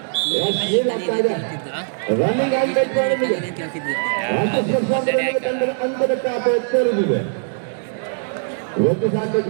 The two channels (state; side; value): silent; left; digital silence